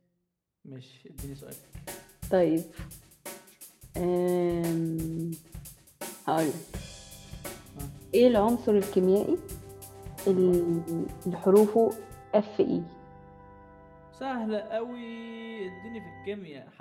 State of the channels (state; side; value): identical; both; correlation 1.00